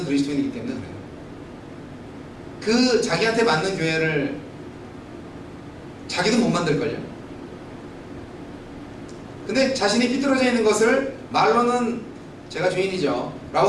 그리스도인이기 때문에 그래요. 그 자기한테 맞는 교회를 자기도 못 만들걸요. 근데 자신이 삐뚤어져 있는 것을 말로는 제가 주인이죠 라고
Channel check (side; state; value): both; identical; correlation 1.00